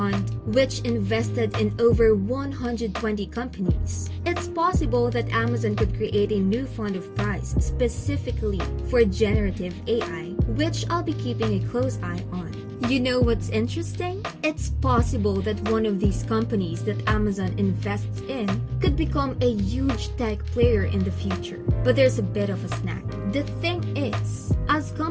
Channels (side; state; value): both; identical; correlation 1.00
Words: which invested in over 120 companies. It's possible that Amazon could create a new fund of prize specifically for generative AI, which I'll be keeping a close eye on. You know what's interesting? It's possible that one of these companies that Amazon invests in could become a huge tech player in the future. But there's a bit of a snag. The thing is, as